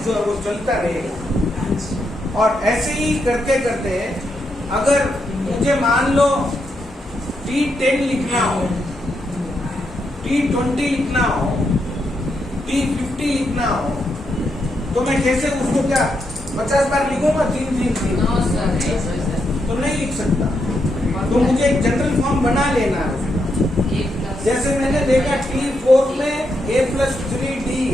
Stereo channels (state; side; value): normal; both; correlation 0.81